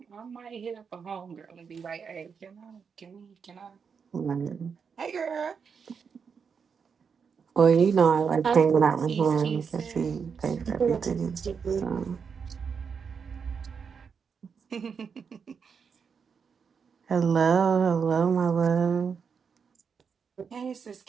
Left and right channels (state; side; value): quieter; left; 6.2 dB